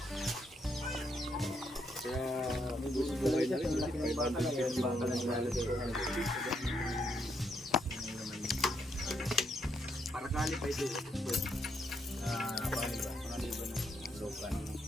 Kaya buhay na rin. Para kali pa ito.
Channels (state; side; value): normal; both; correlation 0.76